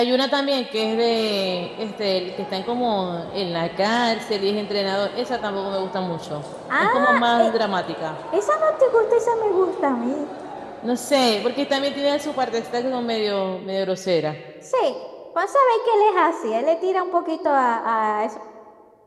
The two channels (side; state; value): both; identical; correlation 1.00